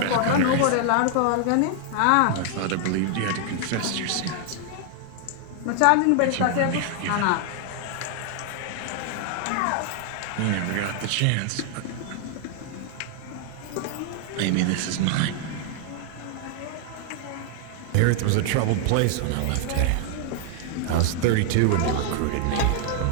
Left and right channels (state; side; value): different; both; correlation 0.00